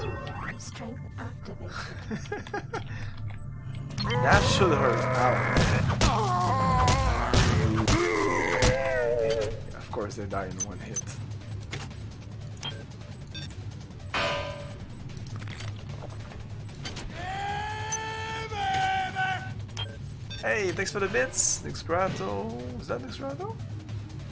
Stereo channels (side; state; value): both; identical; correlation 1.00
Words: Strength activated. That should hurt. Ow. Of course they die in one hit. Hey, thanks for the bits, Nixgrato. Is that Nixgrato?